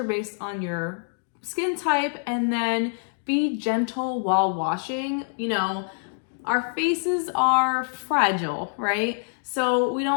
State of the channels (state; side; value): silent; right; 60 dB below the other